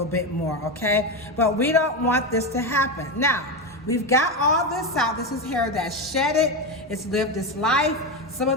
bit more, okay? But we don't want this to happen. Now, we've got all this out. This is hair that's shedded. It's lived its life. Some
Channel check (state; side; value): normal; both; correlation 0.14